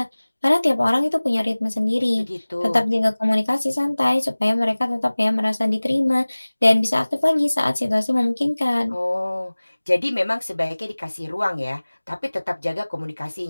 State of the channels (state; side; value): inverted; both; correlation -1.00